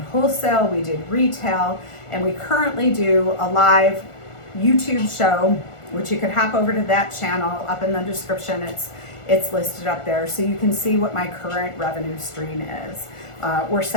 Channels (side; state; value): right; late; 1.4 ms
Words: wholesale, we did retail, and we currently do a live YouTube show, which you can hop over to that channel up in the description. It's listed up there so you can see what my current revenue stream is. We're